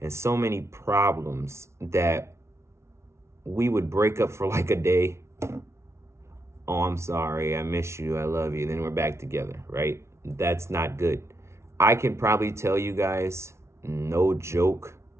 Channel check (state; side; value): late; left; 0.13 ms